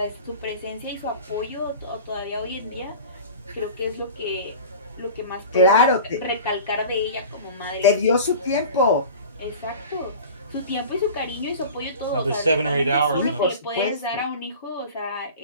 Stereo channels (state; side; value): inverted; both; correlation -0.38